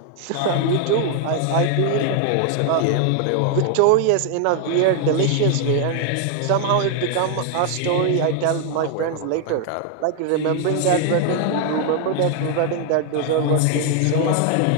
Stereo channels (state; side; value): different; both; correlation 0.00